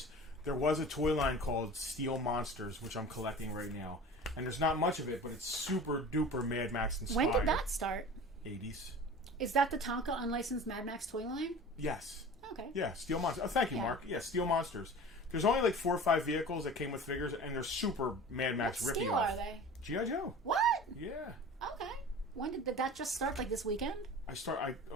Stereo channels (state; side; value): normal; both; correlation 0.38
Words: there was a toy line called Steel Monsters, which I'm collecting right now. And there's not much of it, but it's super-duper Mad Max inspired. When did that start? 80s. Is that the Tonka unlicensed Mad Max toy line? Yes. Okay. Yeah, Steel Monsters. Oh, thank you, Mark. Yeah, Steel Monsters. There's only like 4 or 5 vehicles that came with figures, and they're super Mad Max What rippy scale off. are they? G.I. Joe. What? Yeah. Okay. When did that just start? Like this weekend?